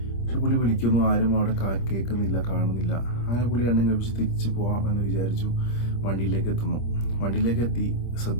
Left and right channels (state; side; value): late; right; 26 ms